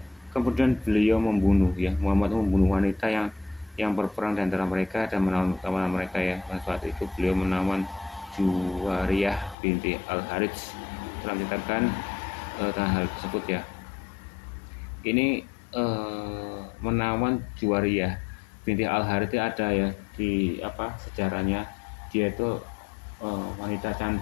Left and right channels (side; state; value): right; drops out; at 9.6 s